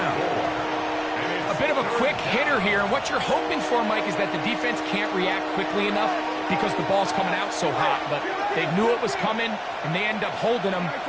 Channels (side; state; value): both; identical; correlation 1.00